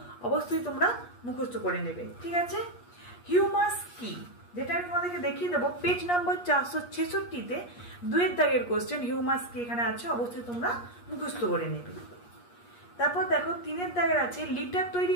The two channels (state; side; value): late; right; 8.4 ms